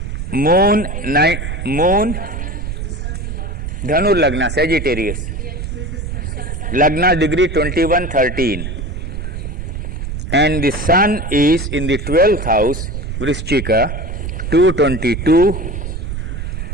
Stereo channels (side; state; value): right; noise; rumble, 5 dB below the sound